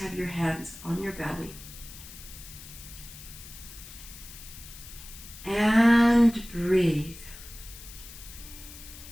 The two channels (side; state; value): left; noise; hiss, 15 dB below the sound